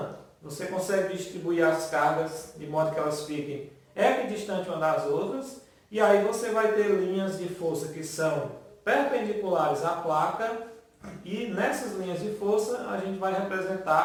você consegue distribuir as cargas de modo que elas fiquem equidistantes umas das outras e aí você vai ter linhas de força que são perpendiculares à placa e nessas linhas de força a gente vai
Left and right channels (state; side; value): identical; both; correlation 1.00